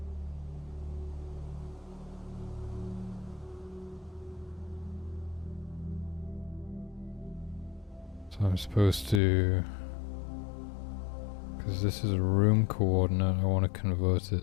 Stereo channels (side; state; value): right; drops out; at 9.2 s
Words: So I'm supposed to, because this is a room coordinate, I want to convert